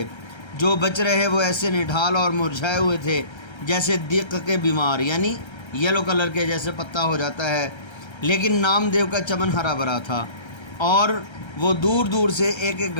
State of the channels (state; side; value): late; right; 1.3 ms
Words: جو بچ رہے وہ ایسے نڈھال اور مرجھائے ہوئے تھے جیسے دیق کے بیمار، یعنی یلو کلر کے جیسے پتا ہو جاتا ہے، لیکن نامدیو کا چمن ہرا بھرا تھا، اور وہ دور دور سے ایک ایک